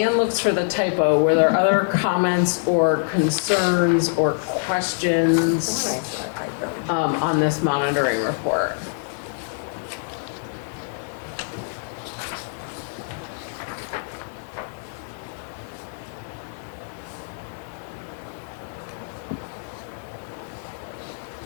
looks for the typo, were there other comments or concerns or questions on this monitoring report?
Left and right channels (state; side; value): silent; right; digital silence